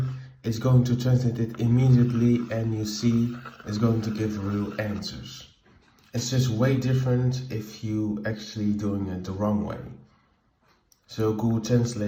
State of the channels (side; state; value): both; identical; correlation 1.00